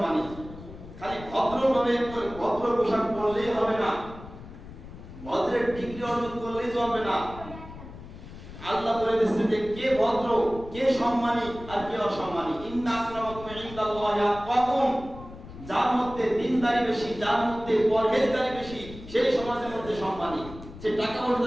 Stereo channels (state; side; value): noise; left; rumble, 15 dB below the sound